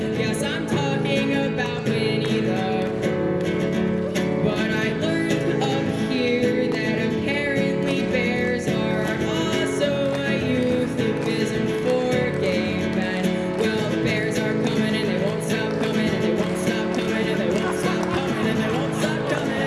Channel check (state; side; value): identical; both; correlation 1.00